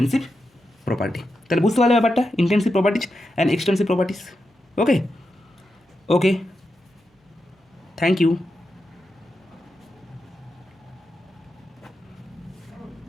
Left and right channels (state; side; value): normal; both; correlation 0.87